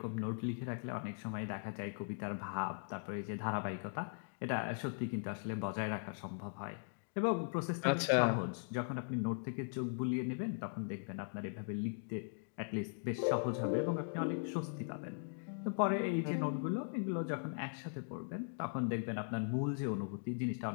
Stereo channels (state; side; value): silent; right; digital silence